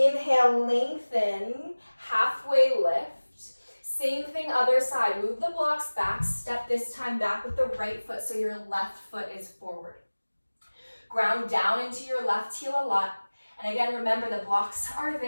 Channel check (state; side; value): inverted; both; correlation -1.00